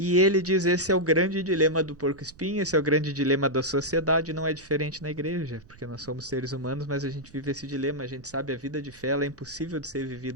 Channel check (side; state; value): right; noise; rumble, 24 dB below the sound